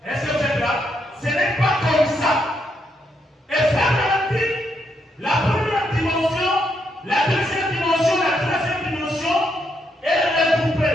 Est-ce que vous êtes là? Ce n'est pas comme ça. Et frère Branham dit, la première dimension, la deuxième dimension, la troisième dimension, elle est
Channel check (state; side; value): normal; both; correlation 0.78